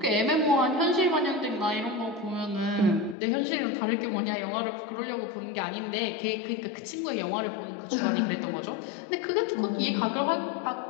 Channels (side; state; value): right; drops out; at 3.2 s